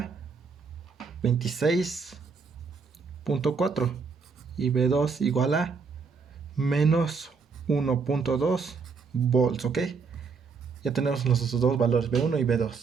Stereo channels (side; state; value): left; quieter; 5.1 dB